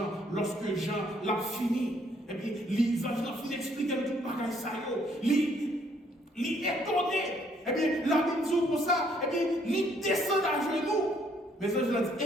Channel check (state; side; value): normal; both; correlation 0.66